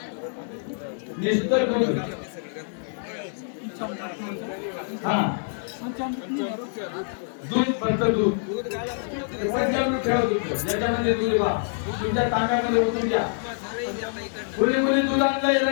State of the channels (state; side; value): silent; right; 61 dB below the other